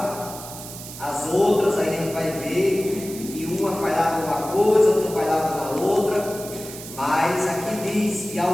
As outras a gente vai ver que uma falhava numa coisa, outra falhava na outra, mas aqui diz: e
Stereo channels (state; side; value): noise; right; hiss, 12 dB below the sound